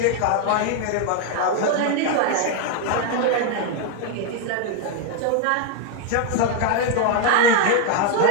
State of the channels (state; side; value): different; both; correlation 0.00